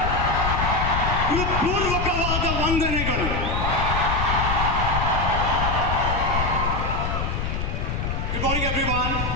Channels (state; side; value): noise; left; rumble, 1 dB below the sound